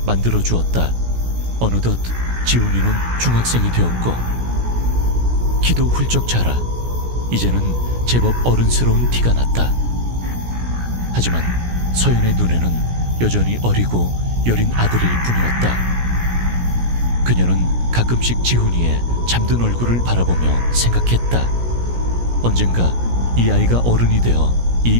만들어 주었다. 어느덧 지훈이는 중학생이 되었고 키도 훌쩍 자라 이제는 제법 어른스러운 티가 났다. 하지만 서연의 눈에는 여전히 어리고 여린 아들일 뿐이었다. 그녀는 가끔씩 지훈이의 잠든 얼굴을 바라보며 생각했다. 언젠가 이 아이가 어른이 되어 이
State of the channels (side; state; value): left; late; 17 ms